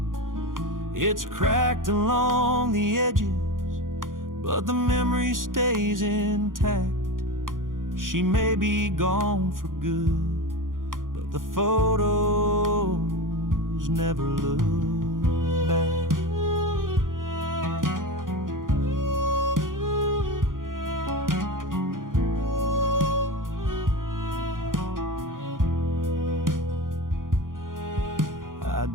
It's cracked along the edges, but the memory stays intact. She may be gone for good, but the photos never look back. I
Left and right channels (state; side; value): late; left; 0.90 ms